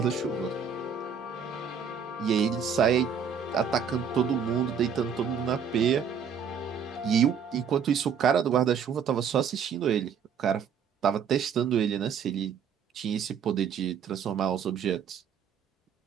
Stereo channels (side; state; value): left; quieter; 7.1 dB